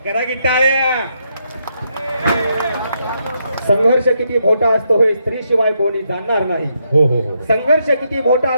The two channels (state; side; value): inverted; both; correlation -0.79